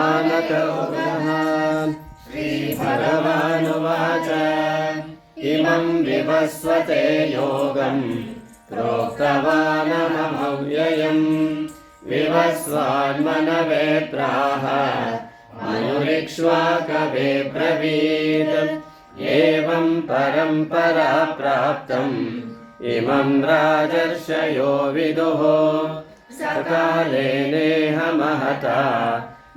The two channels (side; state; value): both; identical; correlation 1.00